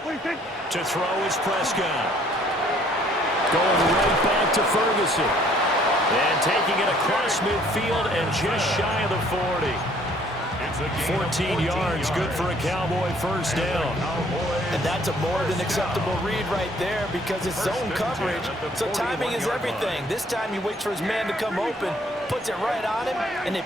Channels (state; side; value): normal; both; correlation 0.61